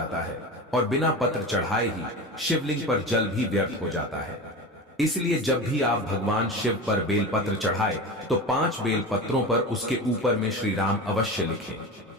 है और बिना पत्र चढ़ाए ही शिवलिंग पर जल भी व्यर्थ हो जाता है। इसलिए जब भी आप भगवान शिव पर बेलपत्र चढ़ाए तो 5 बेलपत्रों पर उसके ऊपर में श्री राम अवश्य लिखें।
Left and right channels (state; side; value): normal; both; correlation 0.28